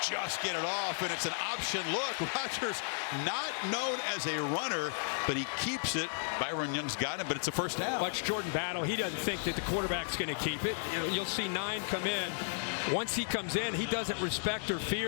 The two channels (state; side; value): silent; right; digital silence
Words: Just get it off, and it's an option look. Rogers not known as a runner, but he keeps it. Byron Young's got him, but it's a first down. Watch Jordan Battle. He doesn't think that the quarterback's going to keep it. You'll see 9 come in. Once he comes in, he doesn't respect or